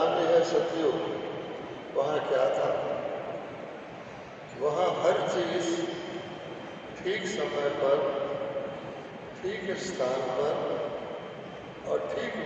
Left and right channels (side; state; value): both; identical; correlation 1.00